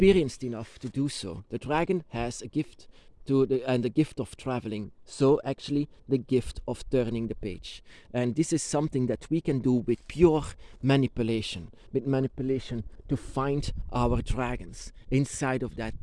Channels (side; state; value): both; identical; correlation 1.00